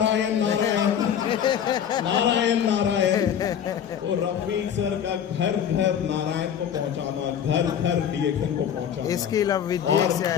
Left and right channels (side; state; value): right; quieter; 8.8 dB